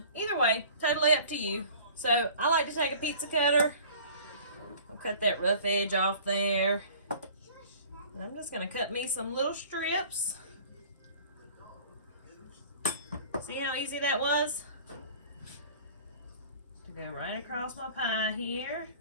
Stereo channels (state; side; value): inverted; both; correlation -0.46